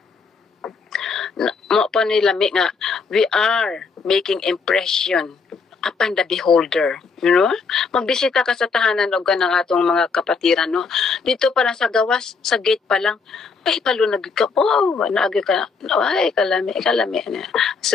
mo pa nila nga we are making impression upon the beholder, you know? Magbisita ka sa tahanan og kanang atong mga kapatiran, no? Dito pa lang sa gawas, sa gate pa lang, ay palunag ka, oh, naagi ka, ay kalami na.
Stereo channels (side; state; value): right; quieter; 4.9 dB